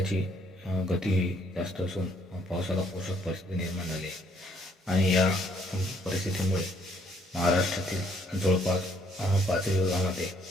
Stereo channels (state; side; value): normal; both; correlation 0.67